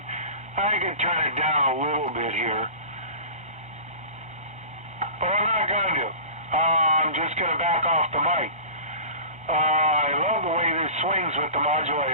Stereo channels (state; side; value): late; left; 1.3 ms